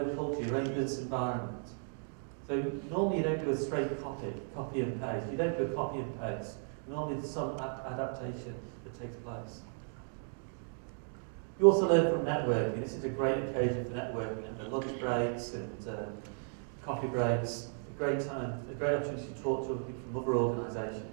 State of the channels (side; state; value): left; silent; 54 dB below the other